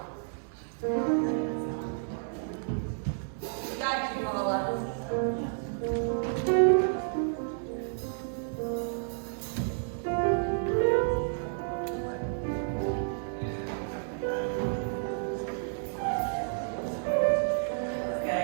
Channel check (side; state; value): left; silent; digital silence